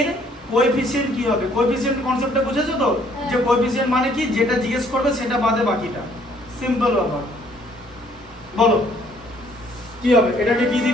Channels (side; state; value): both; normal; correlation 0.62